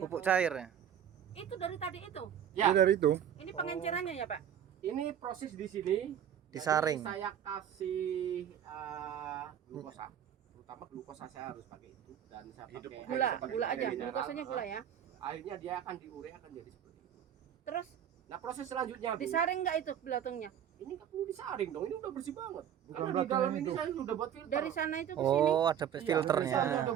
cair ya. Itu dari tadi itu. Ya, dari itu Ini pengencerannya ya, Pak? ini proses di sini. disaring. Jadi saya kasih glukosa, terutama glukosa saya harus pakai itu dan saya Hidup. pakai Gula, air seperti gula air aja. mineral. Glukosanya gula ya. Airnya dia akan diure akan jadi seperti itu. Terus Nah, proses selanjutnya, Bu, disaring nggak itu belatungnya? ini nggak perlu disaring dong, ini udah bersih banget. Karena di belatungnya dalam ini itu. saya sudah buat filter. Dari sana itu ke sini. Oh, ada Iya, Saya filternya. udah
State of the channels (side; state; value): left; quieter; 9.5 dB